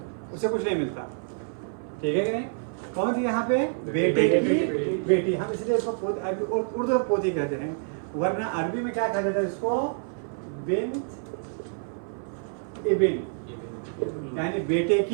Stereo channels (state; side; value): silent; left; 58 dB below the other